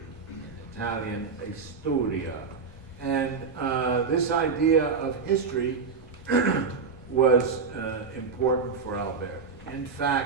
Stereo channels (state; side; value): quieter; left; 5.2 dB